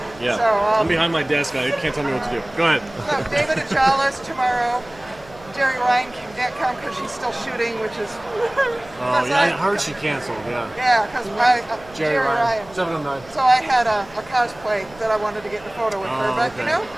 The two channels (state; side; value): noise; right; hum, 22 dB below the sound